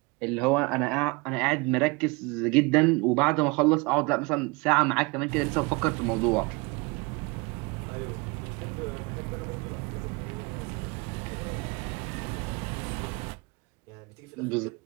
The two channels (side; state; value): left; quieter; 27.6 dB